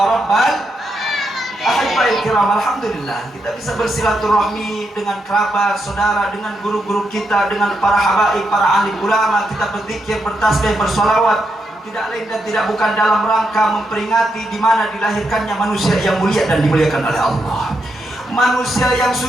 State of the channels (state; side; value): normal; both; correlation 0.82